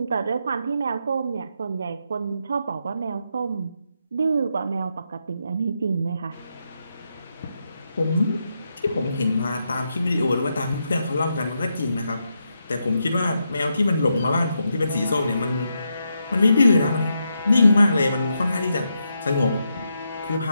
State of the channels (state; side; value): inverted; both; correlation -0.83